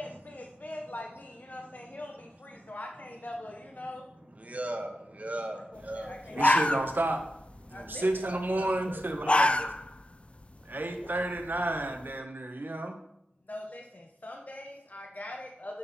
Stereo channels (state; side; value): normal; both; correlation 0.87